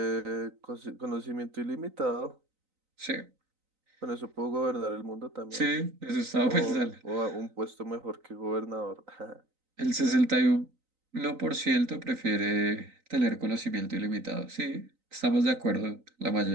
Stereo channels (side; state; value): left; late; 3.9 ms